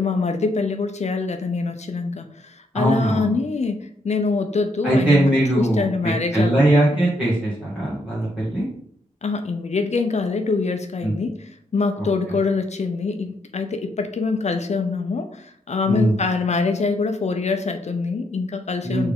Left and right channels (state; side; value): normal; both; correlation 0.75